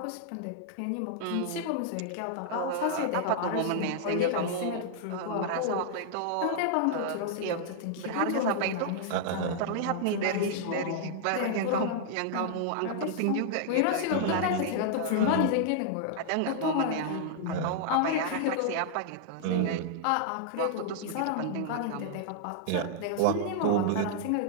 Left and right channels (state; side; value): different; both; correlation -0.01